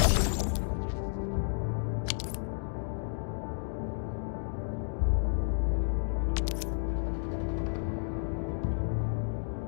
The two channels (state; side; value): silent; right; digital silence